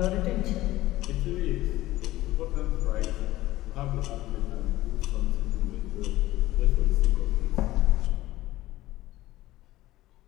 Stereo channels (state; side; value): quieter; right; 16.6 dB